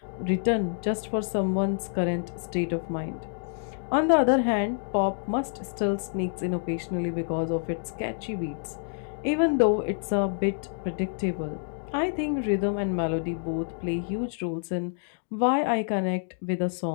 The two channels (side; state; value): right; silent; digital silence